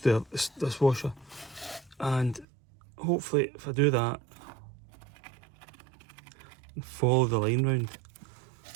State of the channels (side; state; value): left; drops out; at 2.5 s